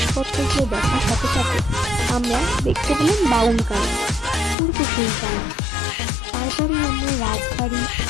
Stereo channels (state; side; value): drops out; right; at 4.5 s